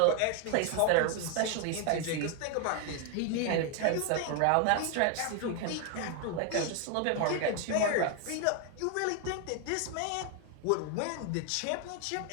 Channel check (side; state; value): both; different; correlation 0.01